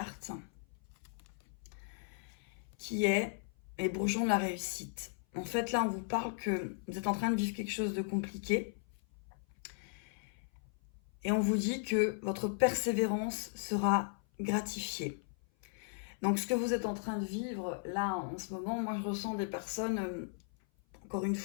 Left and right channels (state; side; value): silent; right; 53 dB below the other